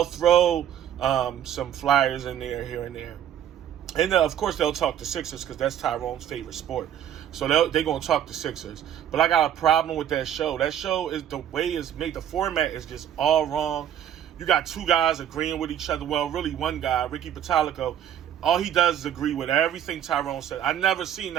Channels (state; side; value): quieter; left; 10.2 dB